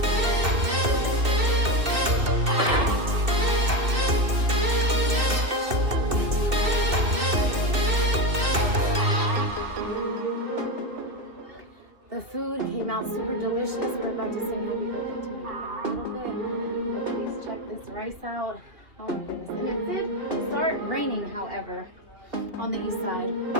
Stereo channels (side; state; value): left; late; 2.7 ms